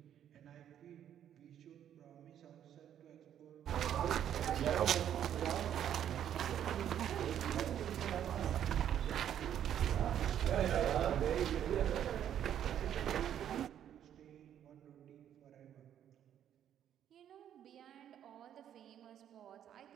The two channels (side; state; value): left; quieter; 10.1 dB